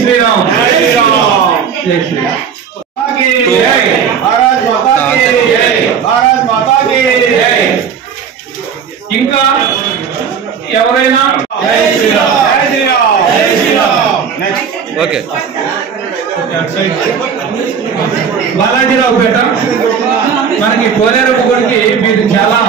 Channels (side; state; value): left; quieter; 7.0 dB